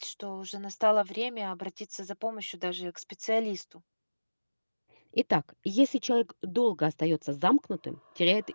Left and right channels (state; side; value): inverted; both; correlation -1.00